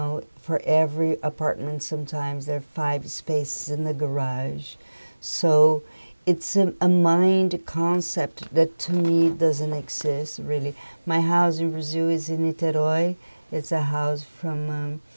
for every apartment sometimes there are 5 spaces in the garage. So it's a mind concept that to me doesn't exist really. My house in Brazil is in Niterói. It's a house from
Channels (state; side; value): inverted; both; correlation -1.00